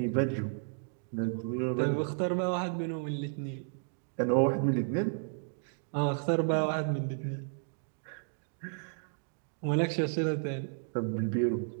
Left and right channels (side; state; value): left; silent; digital silence